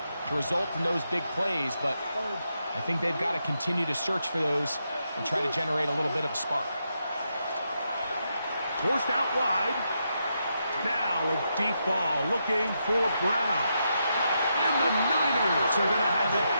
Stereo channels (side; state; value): both; inverted; correlation -0.82